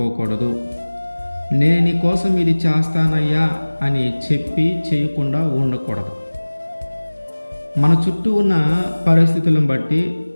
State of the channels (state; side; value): inverted; both; correlation -1.00